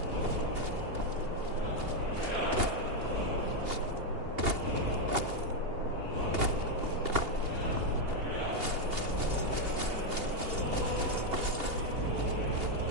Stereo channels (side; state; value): left; late; 2.8 ms